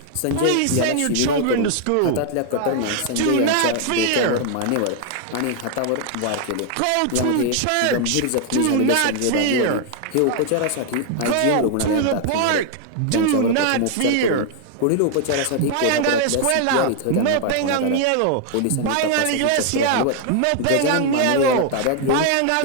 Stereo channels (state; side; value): different; both; correlation 0.00